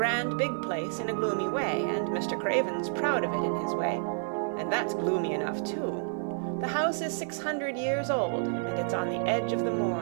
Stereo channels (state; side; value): silent; left; 58 dB below the other